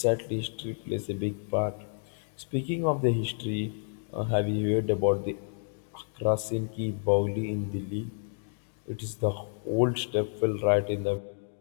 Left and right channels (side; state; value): right; silent; digital silence